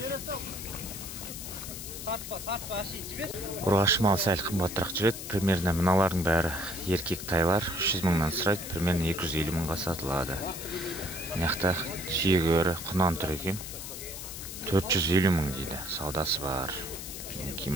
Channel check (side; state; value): left; noise; hiss, 9 dB below the sound